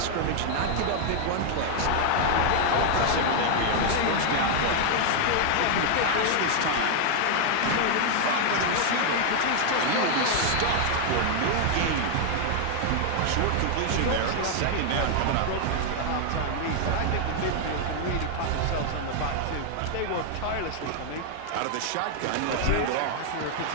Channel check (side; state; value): both; different; correlation 0.00